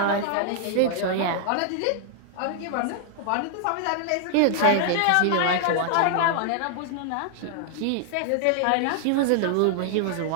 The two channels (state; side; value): different; both; correlation 0.00